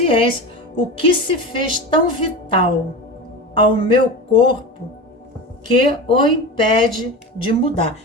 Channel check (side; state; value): both; normal; correlation 0.27